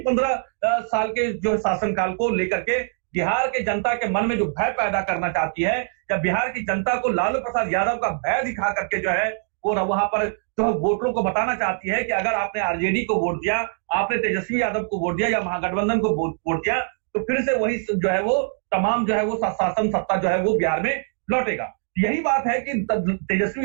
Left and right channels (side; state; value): left; silent; 63 dB below the other